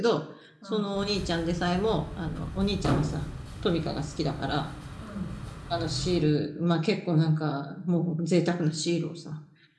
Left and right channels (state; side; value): identical; both; correlation 1.00